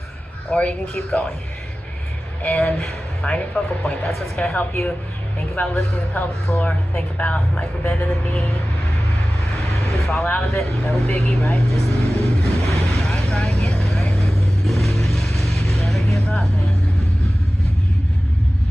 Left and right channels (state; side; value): normal; both; correlation 0.96